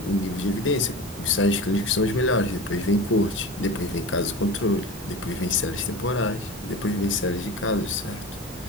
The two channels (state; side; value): normal; both; correlation 0.31